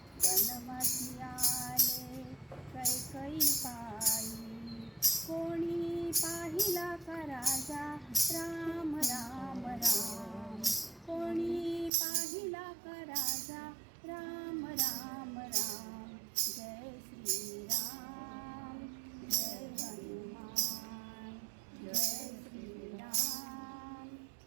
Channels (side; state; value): left; drops out; at 11.9 s